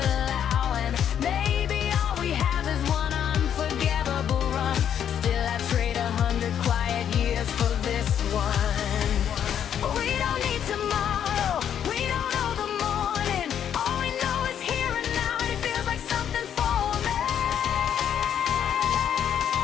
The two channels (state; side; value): quieter; right; 9.2 dB